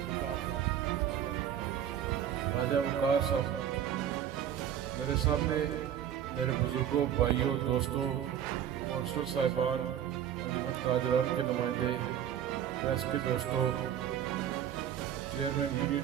राजा वकार साहब, मेरे सामने मेरे बुजुर्गों, भाइयों, दोस्तों, कौंसलर साहिबान, अंजुमन ताजरान के नुमाइंदे, प्रेस के दोस्तों, चेयरमैन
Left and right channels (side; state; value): left; quieter; 9.9 dB